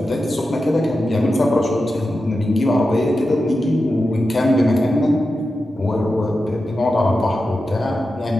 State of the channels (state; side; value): normal; both; correlation 0.91